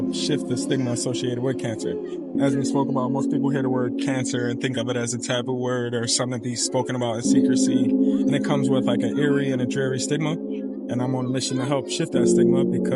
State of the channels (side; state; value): both; identical; correlation 1.00